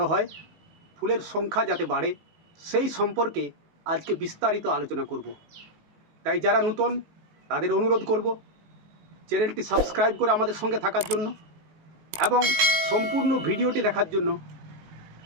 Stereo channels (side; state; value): left; late; 19 ms